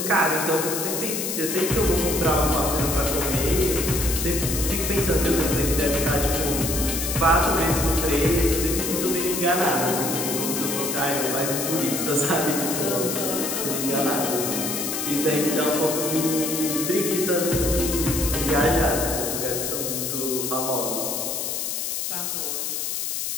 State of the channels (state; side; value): noise; left; hiss, 2 dB below the sound